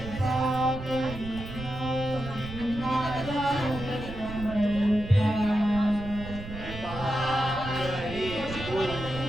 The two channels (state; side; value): noise; right; rumble, 11 dB below the sound